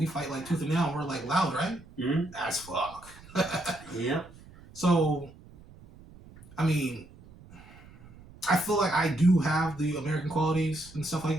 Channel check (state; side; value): noise; right; rumble, 21 dB below the sound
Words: fight like tooth and nail, and we're like loud, right? Mm. As fuck. Yep. So I mean, I feel like I do have the American qualities and stuff like